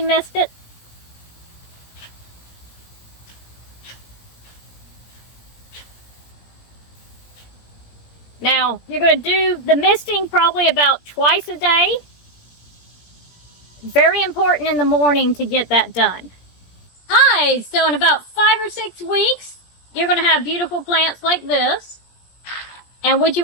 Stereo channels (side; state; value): right; late; 17 ms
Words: mist it. Now, you're going to do the misting probably about twice a day. Very important in the morning to get that done. Hi, so in about 5 or 6 weeks, you're going to have beautiful plants like this. And what you